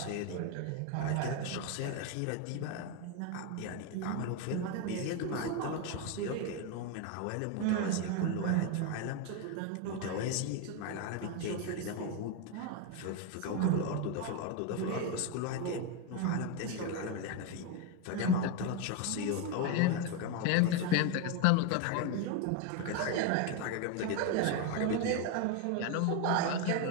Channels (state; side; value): different; both; correlation 0.02